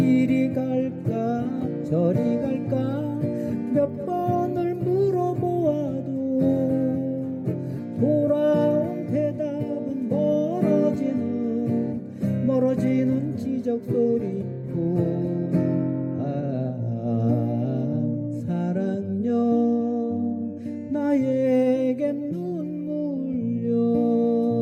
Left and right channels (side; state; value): both; identical; correlation 1.00